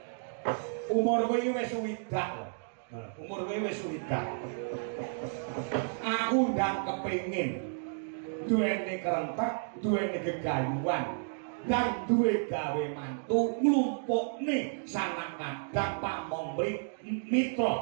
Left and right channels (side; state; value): left; silent; digital silence